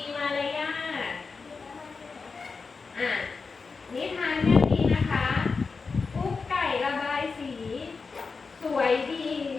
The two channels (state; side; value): quieter; right; 4.7 dB